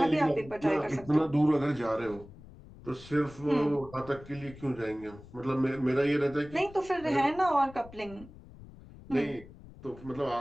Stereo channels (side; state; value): left; noise; rumble, 19 dB below the sound